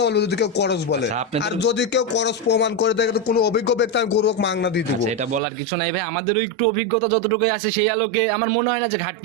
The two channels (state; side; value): drops out; left; at 5.4 s